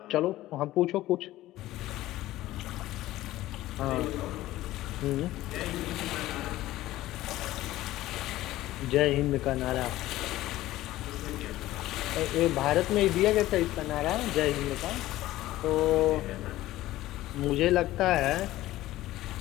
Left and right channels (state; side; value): quieter; right; 15.9 dB